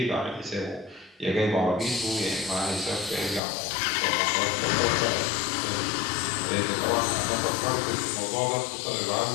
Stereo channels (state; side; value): drops out; right; at 3.4 s